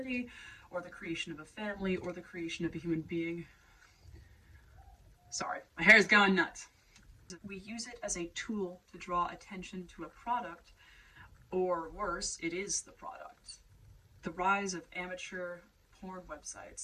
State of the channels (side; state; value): both; identical; correlation 1.00